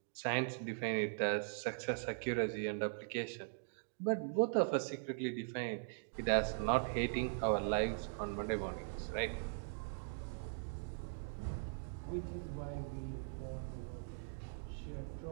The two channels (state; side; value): silent; left; digital silence